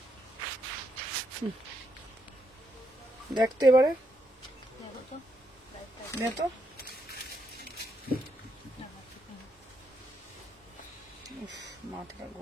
দেখতে এবারে নে তো। মাথাটা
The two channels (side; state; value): both; normal; correlation 0.78